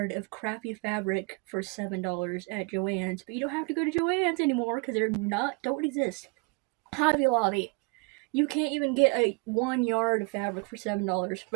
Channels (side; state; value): left; quieter; 30.9 dB